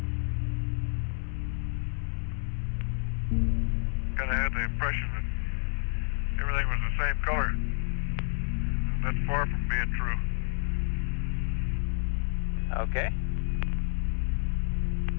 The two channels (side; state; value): right; silent; 56 dB below the other